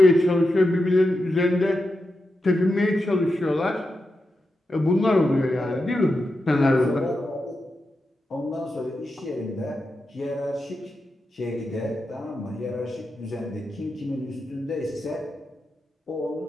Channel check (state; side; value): normal; both; correlation 0.88